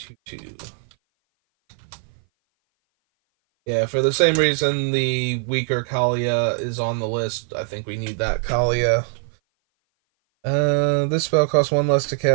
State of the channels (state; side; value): silent; left; 57 dB below the other